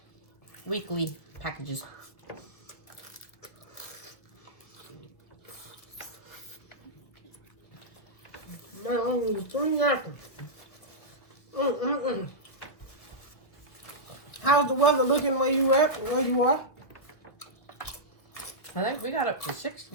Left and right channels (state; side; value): late; right; 1.7 ms